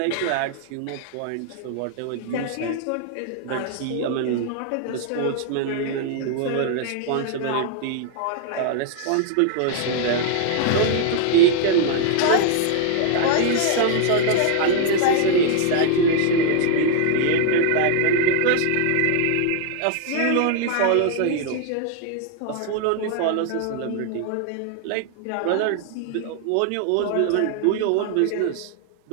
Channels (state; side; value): different; both; correlation 0.00